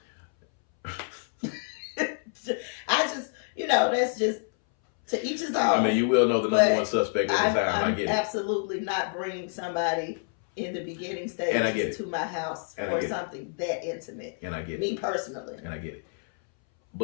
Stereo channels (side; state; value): right; silent; 59 dB below the other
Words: I just, you know, that's just to each his own. I mean, you will know the number one suspect at the time. I get it. I'm absolutely not bringing somebody in the beginning stages to my house for something that intimate. And I get it. Me personally. And I get it.